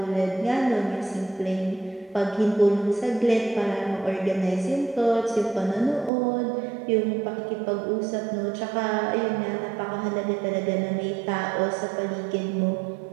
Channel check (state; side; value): drops out; left; at 6.1 s